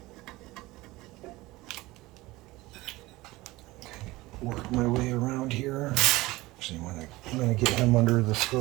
Okay, work my way around here. Actually, I'm gonna get him under the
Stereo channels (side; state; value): left; quieter; 19.9 dB